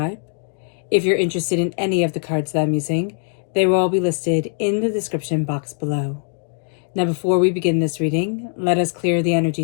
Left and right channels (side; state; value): right; silent; digital silence